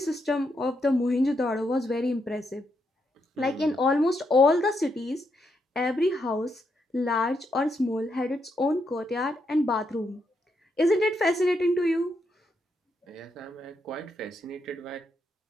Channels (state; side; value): normal; both; correlation 0.80